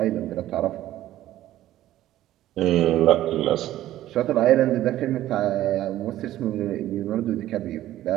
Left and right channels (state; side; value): quieter; left; 13.9 dB